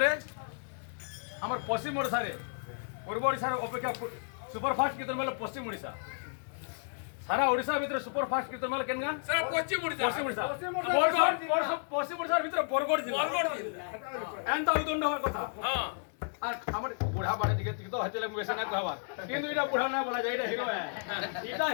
আমার পশ্চিম ওড়িশারে পূর্ব ওড়িশার অপেক্ষা সুপারফাস্ট কীর্তন মেলা পশ্চিম ওড়িশা সারা ওড়িশা ভিতরে সুপারফাস্ট কীর্তন মেলা কেন পশ্চিম ওড়িশা পশ্চিম ওড়িশা পশ্চিম ওড়িশার ভিতরে বরগড় জেলা এনতা উদণ্ড হওয়ার কথা হ্যাঁ আর আমার বুড়া বাড়ি দিকে তো হচ্ছে বেশি না কহবার কিন্তু এটা বুড়া না বলা যায় এটা হিরো এটা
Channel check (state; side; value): silent; right; digital silence